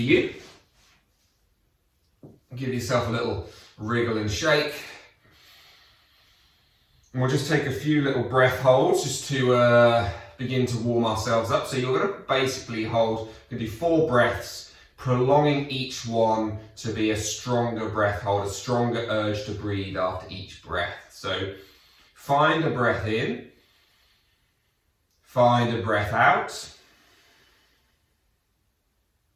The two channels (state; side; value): identical; both; correlation 1.00